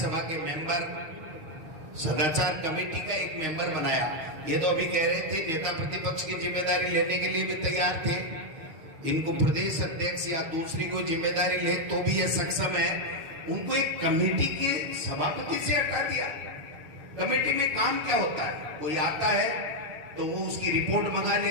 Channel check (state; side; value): late; left; 6.4 ms